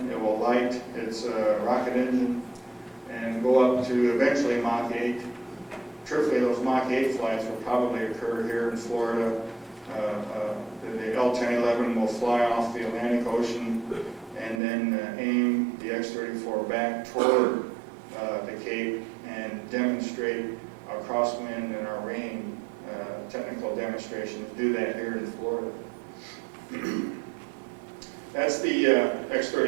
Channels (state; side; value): drops out; left; at 14.6 s